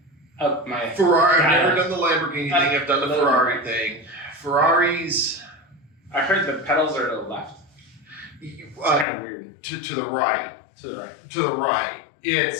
up my Ferrari. I've data. never done the Lamborghini thing. I've done the Ferrari thing. Ferraris. I heard the pedals are to the left. It's kind of weird. To the right. To the right. To the right.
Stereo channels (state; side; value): drops out; right; at 9.1 s